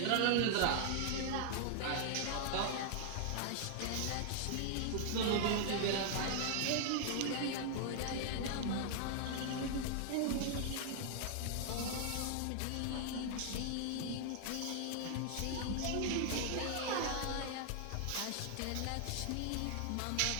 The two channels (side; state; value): both; different; correlation -0.01